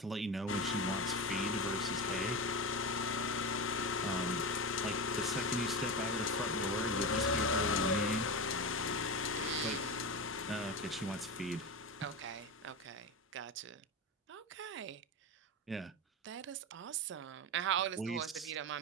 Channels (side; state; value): both; normal; correlation 0.20